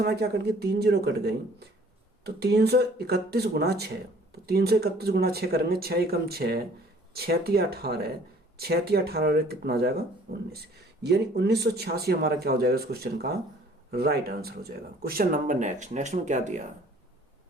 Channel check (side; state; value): both; normal; correlation 0.55